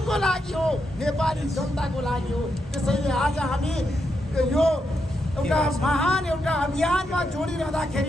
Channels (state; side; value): normal; both; correlation 0.83